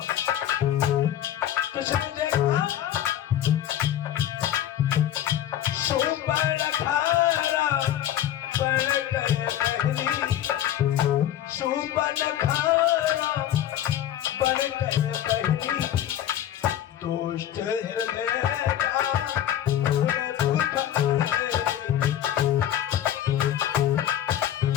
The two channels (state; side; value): quieter; right; 11.3 dB